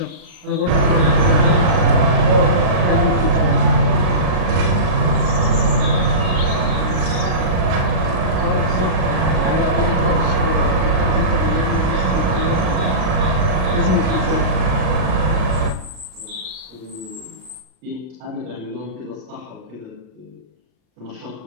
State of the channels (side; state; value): left; late; 39 ms